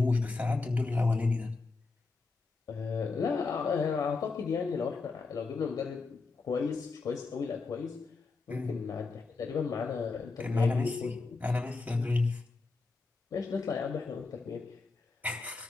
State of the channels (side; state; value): right; quieter; 4.0 dB